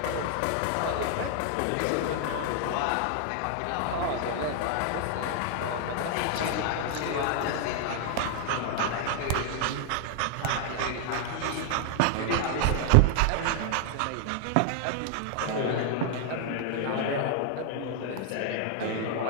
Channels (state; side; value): different; both; correlation 0.00